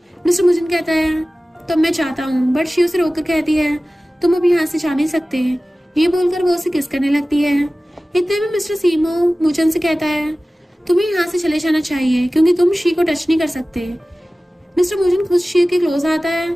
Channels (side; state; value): both; normal; correlation 0.97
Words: मिस्टर मोचन कहता है तो मैं चाहता हूँ, बट शी उसे रोककर कहती है तुम अब यहाँ से जा नहीं सकते। ये बोलकर वो उसे किस करने लगती है। इतने में मिस्टर सीमो मोचन से कहता है तुम्हें यहाँ से चले जाना चाहिए क्योंकि तुम शी को टच नहीं कर सकते। मिस्टर मोचन खुद शी के क्लोज आता है